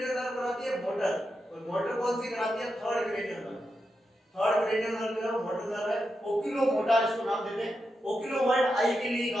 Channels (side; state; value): both; normal; correlation 0.87